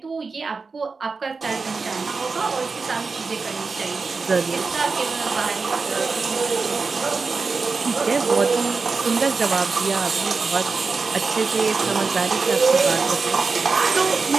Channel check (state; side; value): quieter; left; 4.5 dB